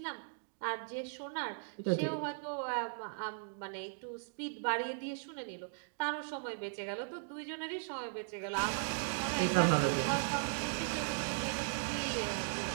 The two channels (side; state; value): left; silent; digital silence